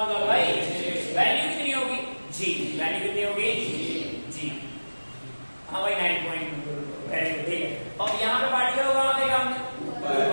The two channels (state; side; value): inverted; both; correlation -1.00